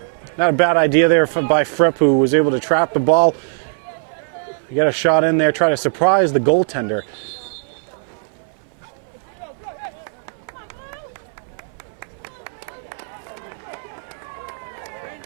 Not a bad idea there by Fripp, who was able to trap the ball. You got a shot in there, try to surprise the goaltender.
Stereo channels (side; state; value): left; silent; 61 dB below the other